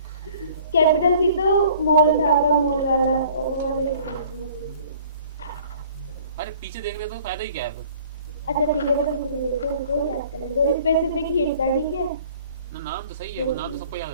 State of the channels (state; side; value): inverted; both; correlation -0.52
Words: कैपिटल सी तो मॉल था, मॉल वाला वो वाले। अरे पीछे देखने तो फायदा ही क्या है फिर? अच्छा ठीक है, मतलब मुझे तो याद करें, तो स्पेसिफिक हीट था, ठीक है। ना नाम तो सही है, वो नाम तो सबको याद